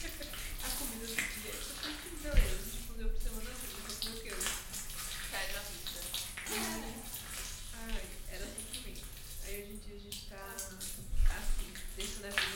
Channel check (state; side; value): identical; both; correlation 1.00